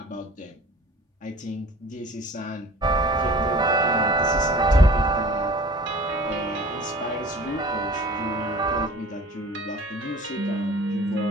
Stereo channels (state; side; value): normal; both; correlation 0.45